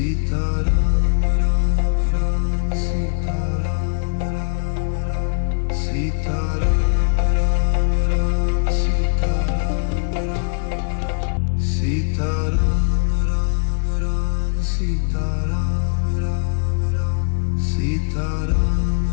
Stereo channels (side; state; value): right; silent; digital silence